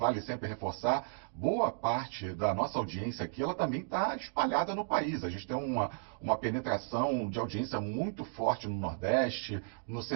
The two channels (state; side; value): silent; left; digital silence